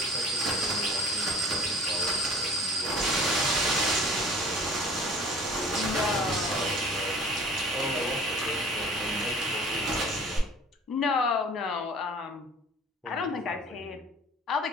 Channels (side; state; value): both; normal; correlation 0.46